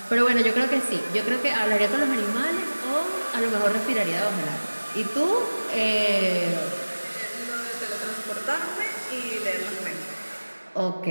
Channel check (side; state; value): both; inverted; correlation -1.00